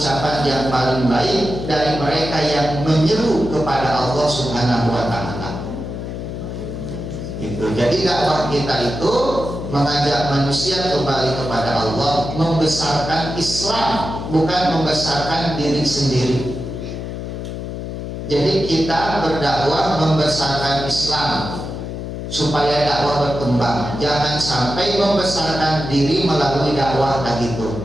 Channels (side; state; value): left; noise; hum, 7 dB below the sound